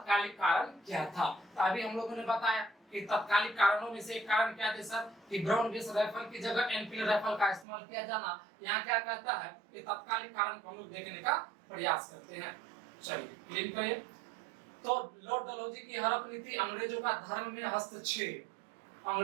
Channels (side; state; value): left; drops out; at 7.7 s